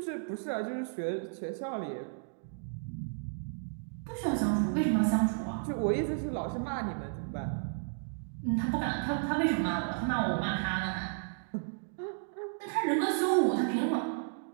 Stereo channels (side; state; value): left; silent; digital silence